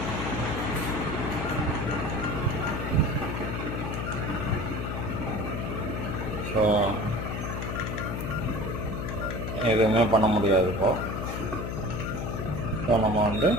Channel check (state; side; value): noise; left; hum, 3 dB below the sound